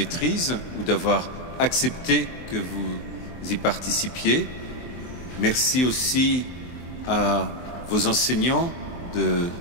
ou d'avoir accepté que vous y participiez. Merci aussi à vos enseignants de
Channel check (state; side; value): late; right; 23 ms